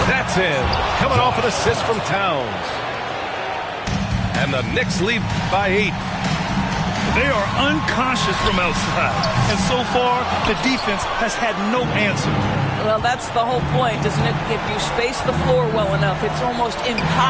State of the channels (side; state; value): both; identical; correlation 1.00